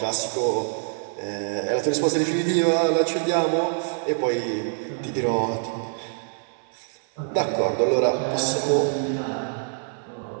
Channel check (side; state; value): left; silent; digital silence